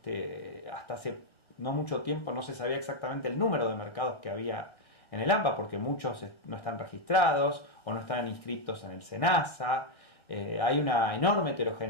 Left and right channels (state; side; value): late; right; 1.3 ms